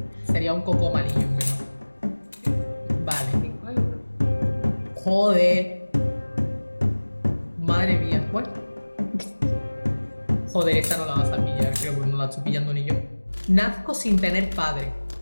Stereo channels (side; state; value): both; inverted; correlation -1.00